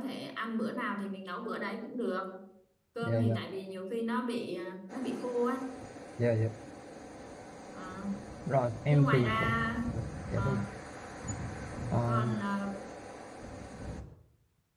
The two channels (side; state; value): both; identical; correlation 1.00